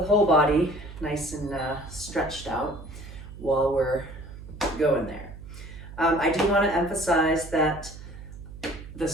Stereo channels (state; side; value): noise; right; hum, 14 dB below the sound